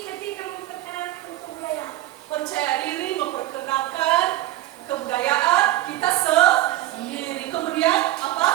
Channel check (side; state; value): left; quieter; 15.6 dB